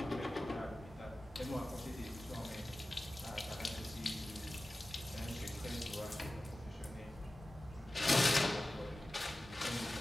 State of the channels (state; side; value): normal; both; correlation 0.96